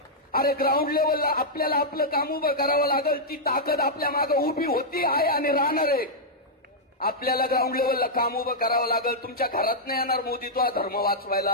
अरे ग्राउंड लेवलला आपल्याला आपलं काम उभं करावं लागेल. ती ताकद आपल्या मागे उभी होती, आहे आणि राहणार आहे. आपल्याला ग्राउंड लेवलला काम उभं करावं लागेल. तुमच्या घरात नाही येणार मोदी तुला धर्म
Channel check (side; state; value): both; normal; correlation -0.08